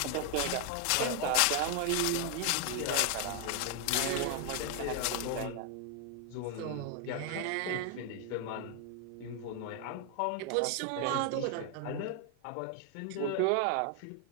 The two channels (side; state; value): both; different; correlation 0.00